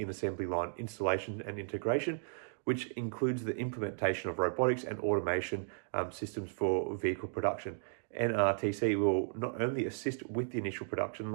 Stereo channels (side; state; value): left; silent; digital silence